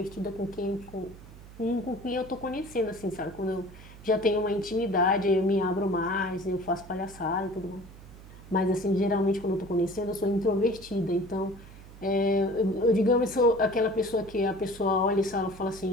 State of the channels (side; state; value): right; noise; hum, 18 dB below the sound